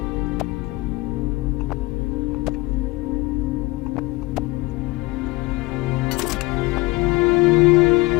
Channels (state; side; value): quieter; right; 22.0 dB